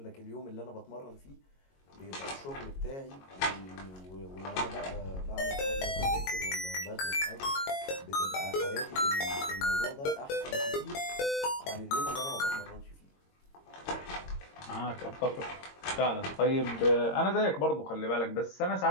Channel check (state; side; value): late; right; 22 ms